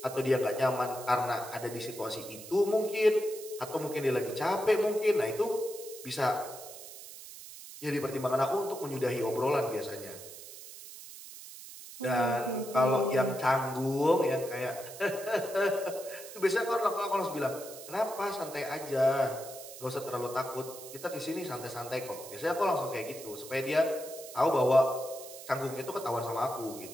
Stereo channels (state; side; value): noise; right; hiss, 14 dB below the sound